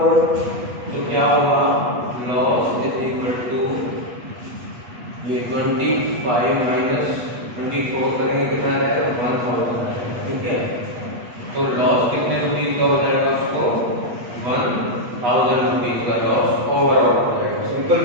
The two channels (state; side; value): late; left; 8.3 ms